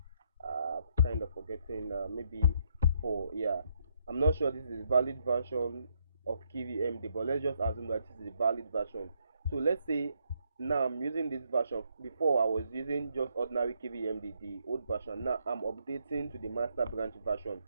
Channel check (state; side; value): inverted; both; correlation -0.74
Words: kind of forgetting, maybe 4. Yeah, I'm not sure this is a valid version of KVMD, but let's just assume that this is a valid version. So let's say now I'm using this version. Before I was using just ordinary KVMD, the old version. Now I'm updating to the master branch version.